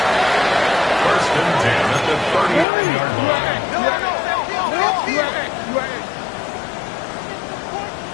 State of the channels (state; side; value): drops out; right; at 2.7 s